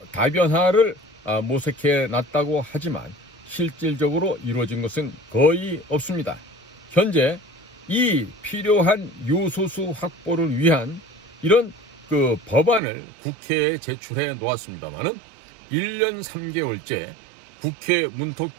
다변화를 모색해 놨다고 하지만 실질적으로 이루어진 것은 거의 없습니다. 현재 이 필요한 요소수 확보를 위한 이런 그 법안을 국회에 제출해 놓았습니다만은 1년 3개월째 국회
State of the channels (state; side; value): drops out; left; at 12.8 s